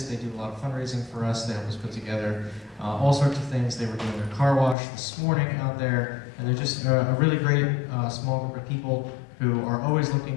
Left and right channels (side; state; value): right; drops out; at 4.8 s